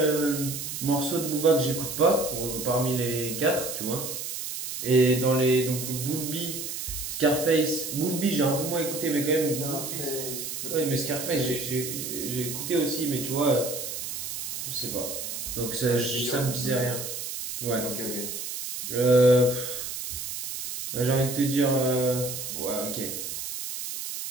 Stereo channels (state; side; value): noise; right; hiss, 6 dB below the sound